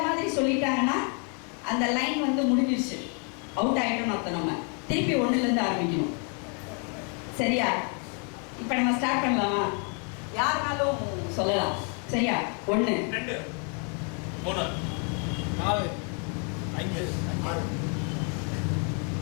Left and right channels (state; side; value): quieter; right; 37.9 dB